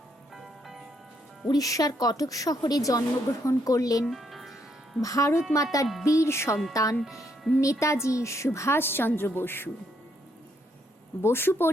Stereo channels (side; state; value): both; normal; correlation 0.74